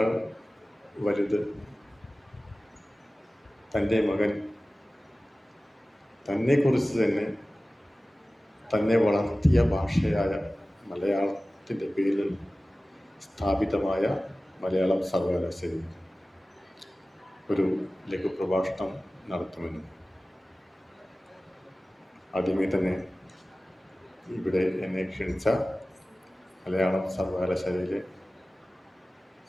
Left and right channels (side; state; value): both; normal; correlation 0.97